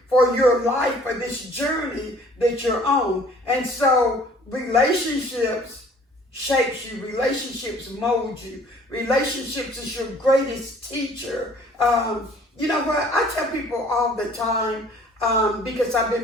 for your life, for this journey that you're on. And so relationships shapes you. Relationships mold you. Relationships is your greatest teacher. You know what? I tell people all the time, because I've been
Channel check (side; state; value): both; normal; correlation 0.54